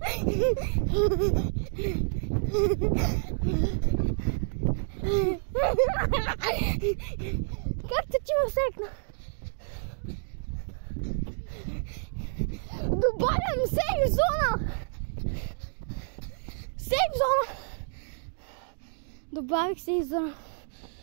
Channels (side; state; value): left; silent; digital silence